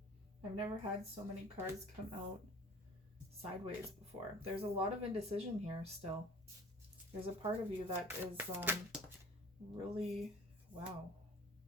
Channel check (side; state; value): both; normal; correlation 0.46